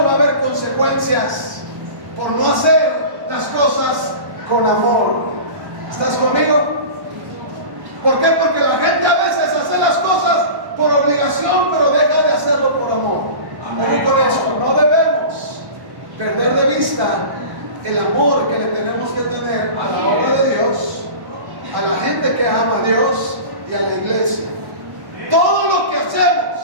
va a haber consecuencias por no hacer las cosas con amor. ¿Estás conmigo? ¿Por qué? Porque la gente a veces hace las cosas obligación, pero deja de hacerlo por amor. Amén. Con esto, no debemos perder de vista el amor que le tenemos que tener a la obra de Dios, a la gente que ama a Dios y a la iglesia. Todo lo que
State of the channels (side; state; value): left; late; 1.1 ms